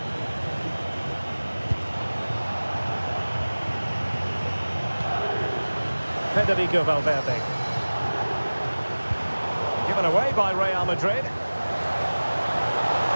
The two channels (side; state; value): both; inverted; correlation -1.00